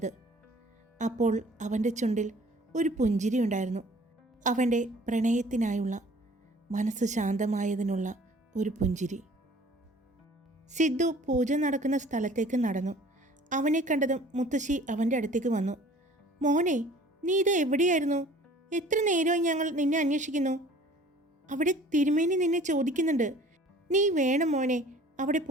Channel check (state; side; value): normal; both; correlation 0.50